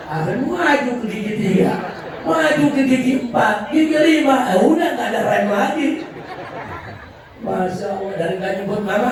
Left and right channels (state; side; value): identical; both; correlation 1.00